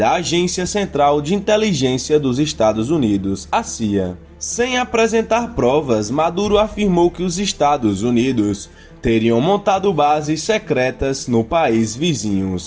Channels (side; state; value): both; identical; correlation 1.00